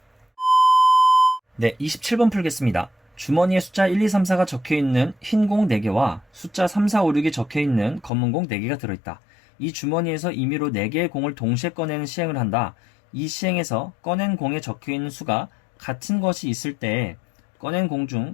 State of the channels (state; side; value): drops out; right; at 8.1 s